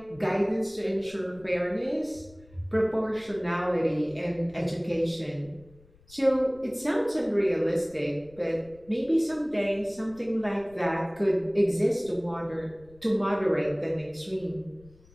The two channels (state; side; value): noise; left; rumble, 26 dB below the sound